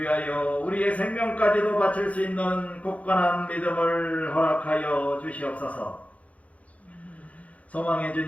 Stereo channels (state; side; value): late; right; 0.067 ms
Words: 우리의 생명까지도 바칠 수 있는 굳건한 믿음을 허락하여 주시옵소서. 소망의